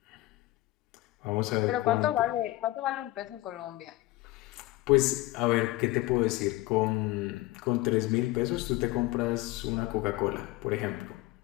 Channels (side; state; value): right; quieter; 18.2 dB